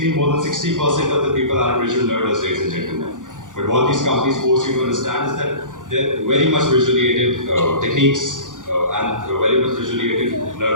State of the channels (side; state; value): left; late; 0.88 ms